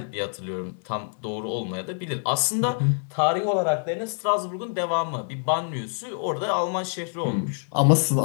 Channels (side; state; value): right; silent; digital silence